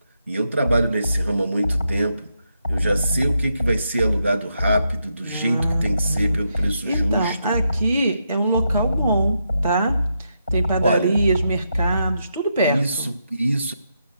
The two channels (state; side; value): inverted; both; correlation -0.82